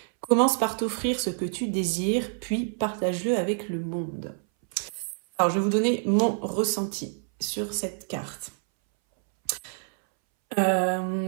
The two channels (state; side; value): silent; left; 60 dB below the other